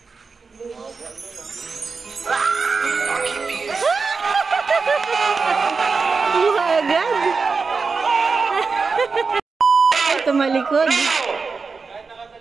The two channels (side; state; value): left; quieter; 4.7 dB